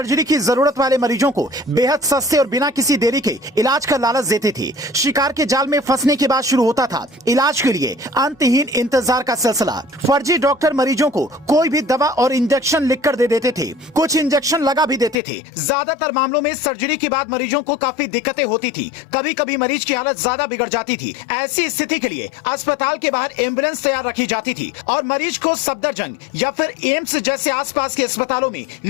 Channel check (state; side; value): drops out; right; at 15.2 s